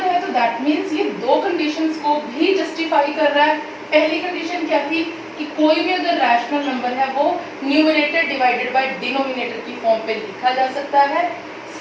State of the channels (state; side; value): identical; both; correlation 1.00